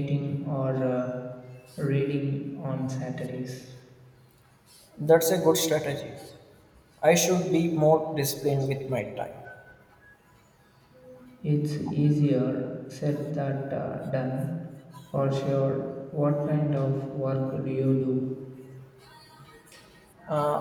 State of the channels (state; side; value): identical; both; correlation 1.00